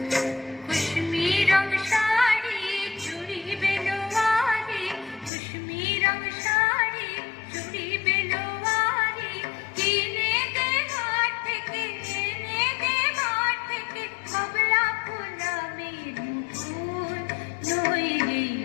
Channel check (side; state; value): right; drops out; at 5.3 s